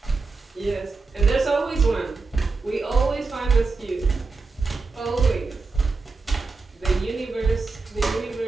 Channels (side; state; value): left; quieter; 4.1 dB